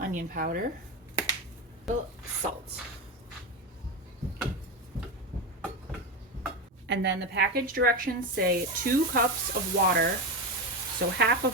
onion powder. Salt. And then the package directions say 2 cups of water. So half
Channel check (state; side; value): normal; both; correlation 0.16